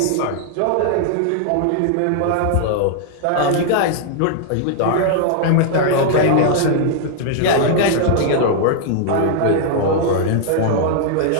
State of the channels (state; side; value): different; both; correlation -0.01